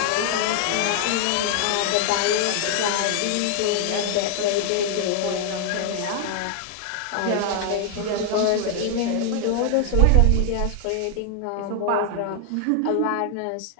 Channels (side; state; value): both; different; correlation 0.00